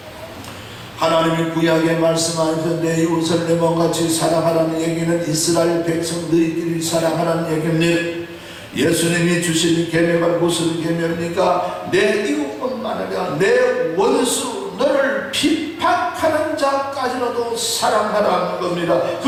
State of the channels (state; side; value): identical; both; correlation 1.00